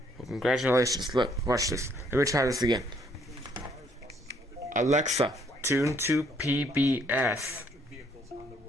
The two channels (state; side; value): normal; both; correlation 0.67